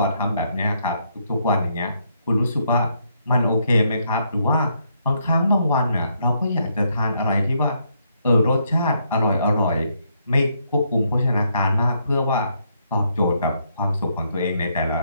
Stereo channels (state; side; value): inverted; both; correlation -0.75